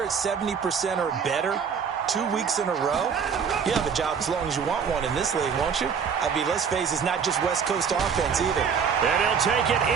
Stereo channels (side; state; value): left; quieter; 6.6 dB